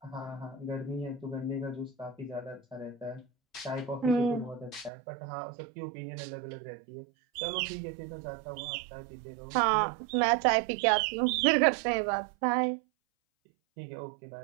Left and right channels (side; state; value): left; drops out; at 4.9 s